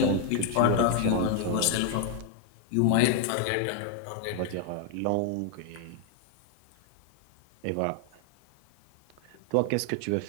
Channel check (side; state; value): both; different; correlation 0.00